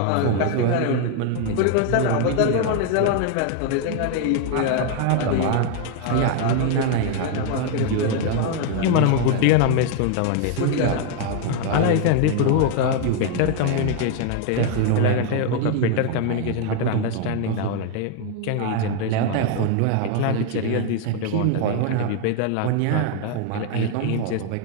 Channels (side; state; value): both; different; correlation 0.01